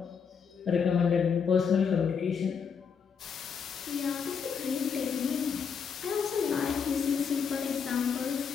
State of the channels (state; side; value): quieter; right; 6.5 dB